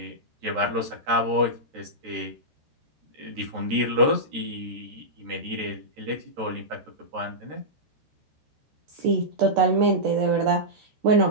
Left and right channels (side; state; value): left; late; 13 ms